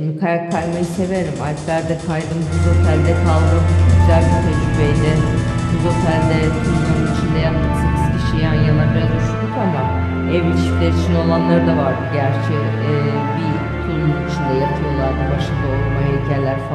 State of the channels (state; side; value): identical; both; correlation 1.00